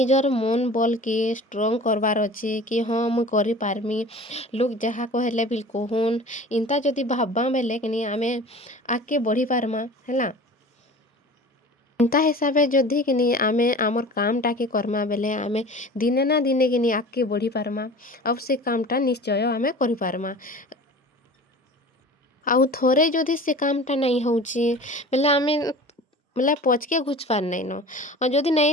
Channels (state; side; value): normal; both; correlation 0.40